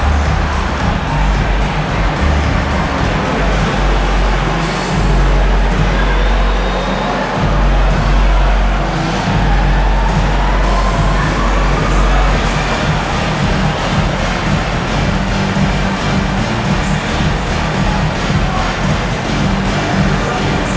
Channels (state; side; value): identical; both; correlation 1.00